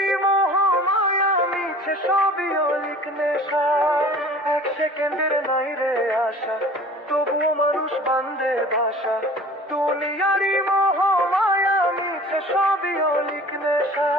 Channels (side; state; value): both; normal; correlation 0.45